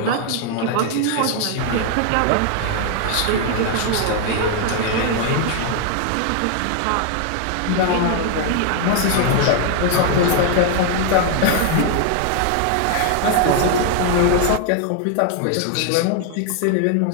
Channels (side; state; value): both; different; correlation 0.00